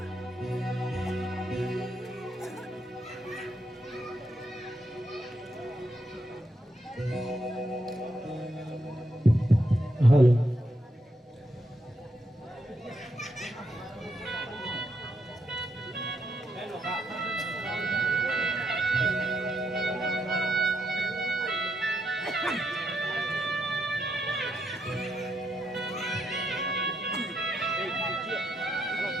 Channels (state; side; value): normal; both; correlation 0.80